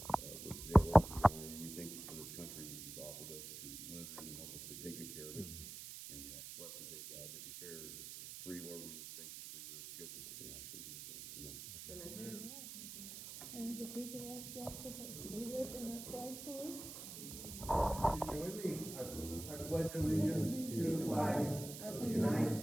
with today, Lord, we honor you. We thank you for this country that you've offered us to live in and help us to take good care of it. And we ask, bless the day, God, that be fair and free, Lord. We just thank you for your goodness. We ask in Jesus' name. Amen. And if we could ask Jack to lead us in our flag salute. Join me. I pledge allegiance to the flag of the United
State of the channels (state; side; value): noise; right; hiss, 10 dB below the sound